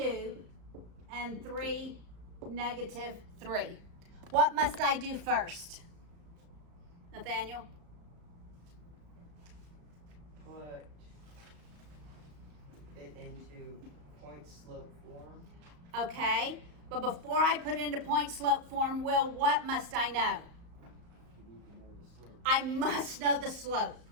and 3, -3. What must I do first? Nathaniel? Put it into point slope form. Okay, but before I put it into point slope form, Will, what must I know? You need to know the slope. I must know the slope.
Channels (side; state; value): left; late; 35 ms